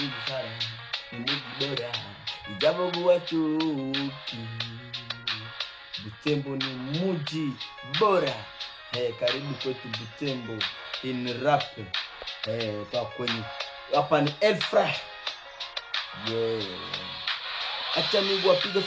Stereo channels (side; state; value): both; identical; correlation 1.00